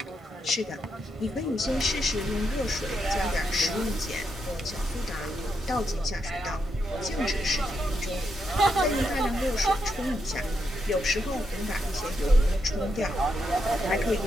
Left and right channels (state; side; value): normal; both; correlation 0.81